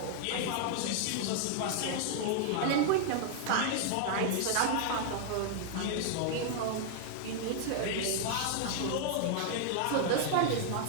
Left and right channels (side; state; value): both; different; correlation -0.01